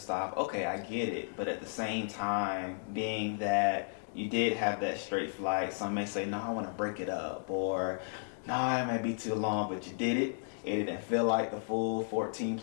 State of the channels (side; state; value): right; silent; digital silence